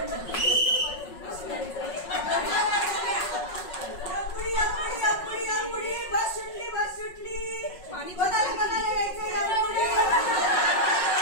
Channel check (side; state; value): right; late; 5.4 ms